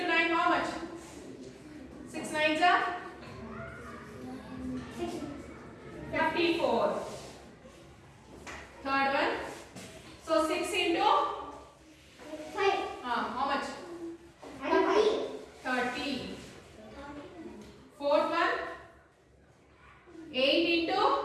9 how much? 6 nines are 54. Third one. So 6 into 5. how much? 30. Fourth one. 8 into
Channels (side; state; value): both; identical; correlation 1.00